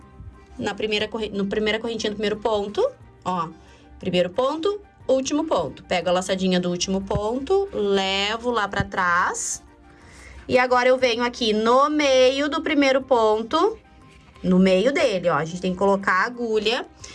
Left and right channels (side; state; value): both; identical; correlation 1.00